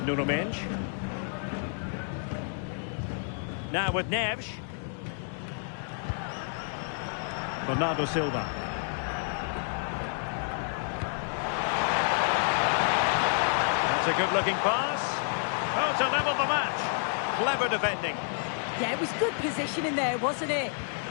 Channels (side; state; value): right; silent; 58 dB below the other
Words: up. Nuno Mendes. Now with Neves. Bernardo Silva. That's a good-looking pass. Oh, to level the match. Clever defending. Yeah, it was good positioning there, wasn't it?